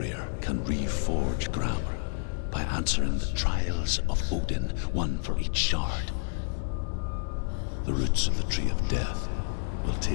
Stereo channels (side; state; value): right; silent; digital silence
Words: can reforge Gramr by answering the trials of Odin, one for each shard. The roots of the Tree of Death will